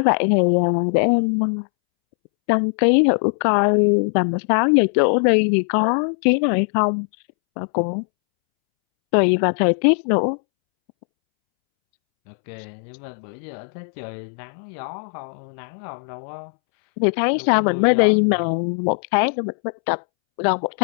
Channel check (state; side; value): silent; right; 66 dB below the other